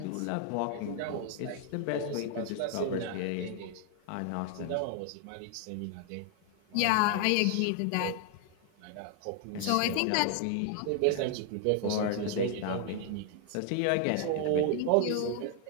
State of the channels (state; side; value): different; both; correlation 0.00